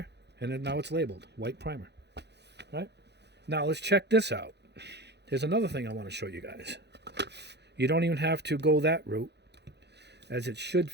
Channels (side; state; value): left; late; 0.49 ms